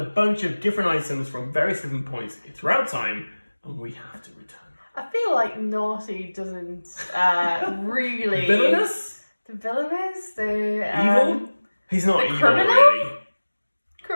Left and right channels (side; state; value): both; inverted; correlation -1.00